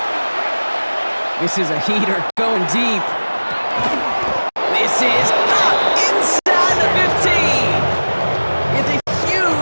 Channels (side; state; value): both; inverted; correlation -1.00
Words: This is a heater going deep. This is up inside the 15. It's a